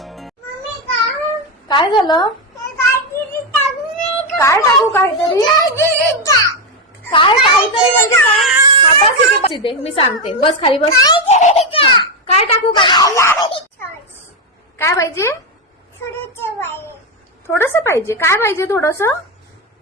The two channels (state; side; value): normal; both; correlation 0.08